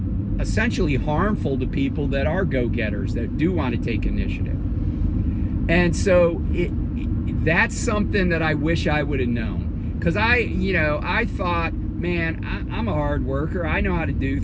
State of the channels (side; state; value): both; identical; correlation 1.00